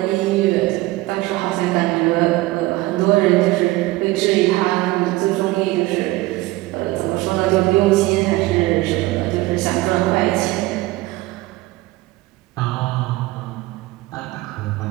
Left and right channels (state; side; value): quieter; left; 19.3 dB